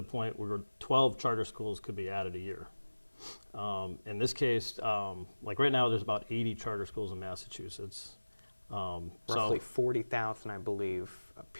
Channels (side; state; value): both; inverted; correlation -1.00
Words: point where 12 charter schools could be added a year. In this case, like right now, there's about 80 charter schools in Massachusetts. Roughly 40,000, I believe,